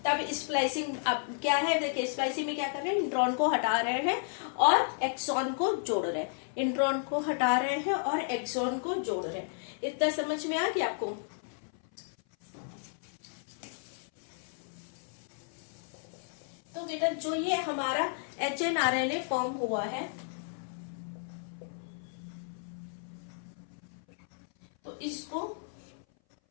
तब स्प्लाइसिंग अब क्या है, देखिए स्प्लाइसिंग में क्या कर रहे हैं, इंट्रॉन को हटा रहे हैं और एक्सॉन को जोड़ रहे हैं, इंट्रॉन को हटा रहे हैं और एक्सॉन को जोड़ रहे हैं। इतना समझ में आ गया आपको। तो बेटा जो ये हमारा एचएनआरएनए फॉर्म हुआ है, तो इसको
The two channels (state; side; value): silent; right; 56 dB below the other